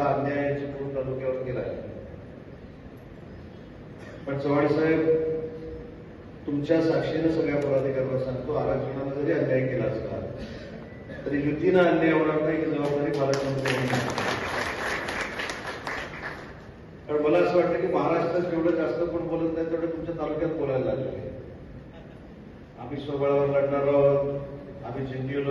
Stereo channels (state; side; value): identical; both; correlation 1.00